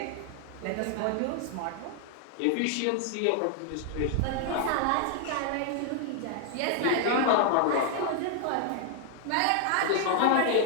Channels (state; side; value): different; both; correlation 0.00